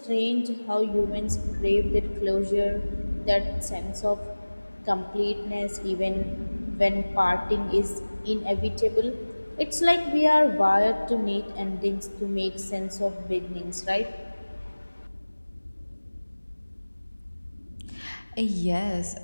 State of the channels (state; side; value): inverted; both; correlation -1.00